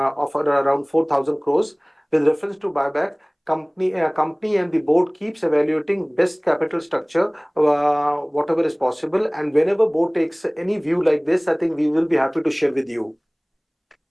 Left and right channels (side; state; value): both; identical; correlation 1.00